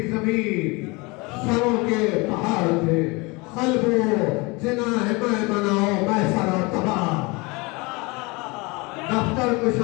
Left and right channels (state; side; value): quieter; right; 26.2 dB